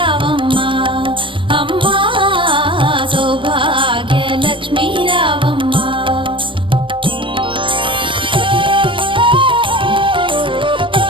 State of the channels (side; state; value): left; late; 0.25 ms